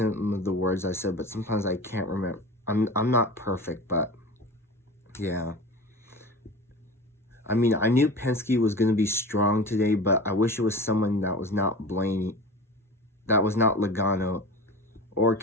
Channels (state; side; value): normal; both; correlation 0.34